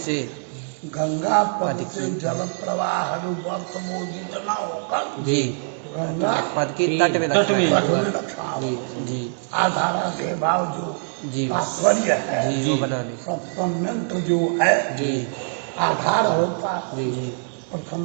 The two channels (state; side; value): silent; left; digital silence